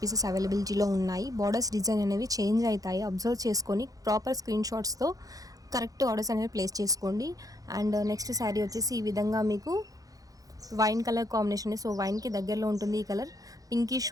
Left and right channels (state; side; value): late; left; 0.17 ms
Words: పీసెస్ అవైలబిలిటీలో ఉన్నాయి. బార్డర్స్ డిజైన్ అనేవి చేంజ్ అవుతాయి, అబ్జర్వ్ చేసుకొని ప్రాపర్ స్క్రీన్ షాట్స్తో కరెక్ట్ ఆర్డర్స్ అనేవి ప్లేస్ చేసుకోండి. అండ్ నెక్స్ట్ శారీ వచ్చేసి ఈ విధంగా మీకు వైన్ కలర్ కాంబినేషన్. సో వైన్కి దగ్గరలో ఉంటుంది ఈ colour,